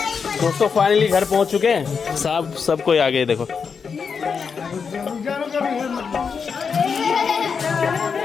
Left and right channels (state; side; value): quieter; right; 5.9 dB